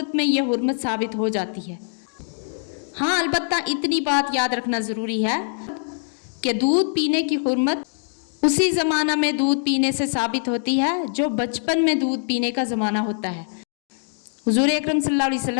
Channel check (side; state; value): right; silent; digital silence